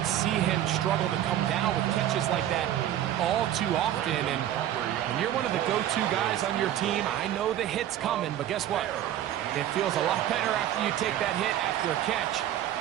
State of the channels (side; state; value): left; quieter; 11.9 dB